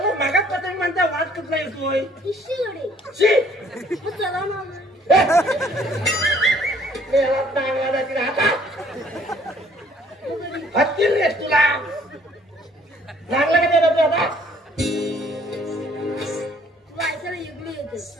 मागात पतंग म्हणता वाद कुठला येतोय इश्य गणी चला मामा चांगला जातील हातात हत्तील रे तुला चांगला का देतो आता वायसाला युगली येते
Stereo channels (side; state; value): both; normal; correlation 0.60